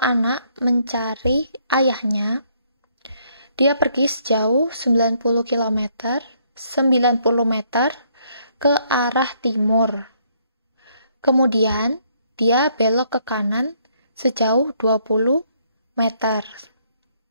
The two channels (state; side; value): inverted; both; correlation -0.69